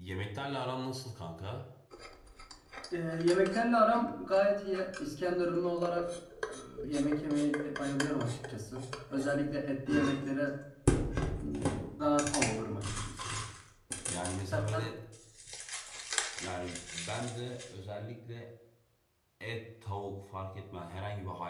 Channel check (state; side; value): identical; both; correlation 1.00